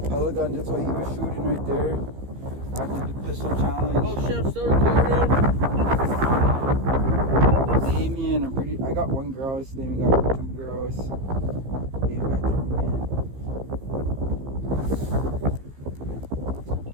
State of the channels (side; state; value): left; late; 15 ms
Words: Pellet gun, that's what he was shooting right there. After the pistol challenge. Oh shit, I'm still recording. Damien, I got 1 grouse. Damien got 2 grouse. Damien got ptarmigan.